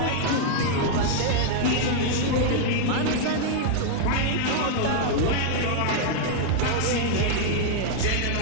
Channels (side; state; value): both; different; correlation 0.00